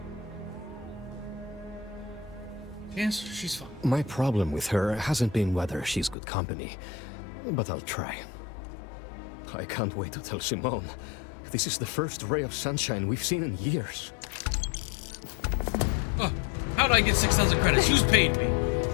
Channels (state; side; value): drops out; right; at 6.2 s